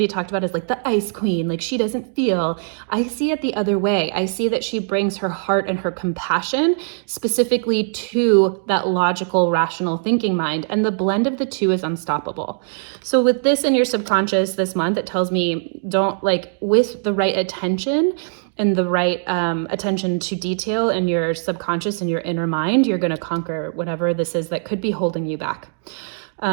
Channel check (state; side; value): silent; left; digital silence